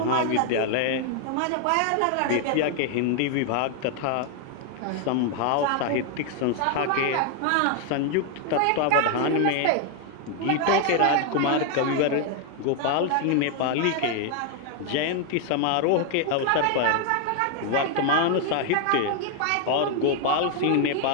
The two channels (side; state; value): both; different; correlation 0.00